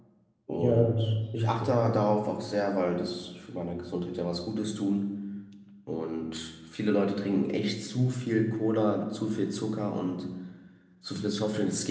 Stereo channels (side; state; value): both; identical; correlation 1.00